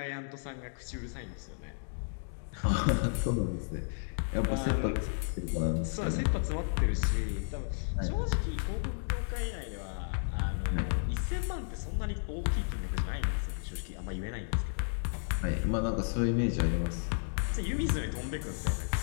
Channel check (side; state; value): right; silent; digital silence